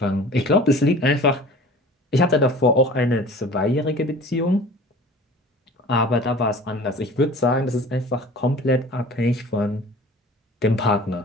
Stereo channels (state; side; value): normal; both; correlation 0.42